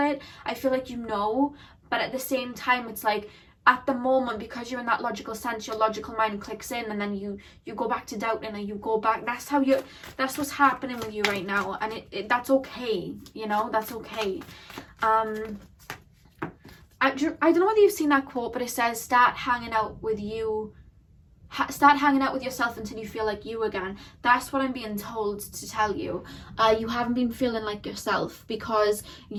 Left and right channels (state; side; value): identical; both; correlation 1.00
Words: I feel like you know, but at the same time, it's like, at the moment, because you're in that logical sense, your logical mind clicks in, and then you go back to doubting, and you go back. That's what's happening with you right now, and that's okay. You know, that's okay. I don't know whether you've seen that quote, but it says, start hanging out with yourself until you feel like you again. That's what I'm being told to tell you. You haven't been feeling like yourself because